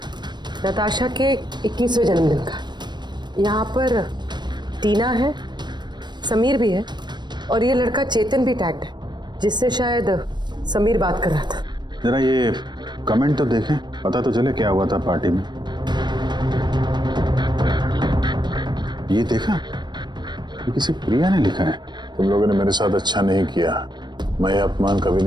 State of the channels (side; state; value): left; late; 0.21 ms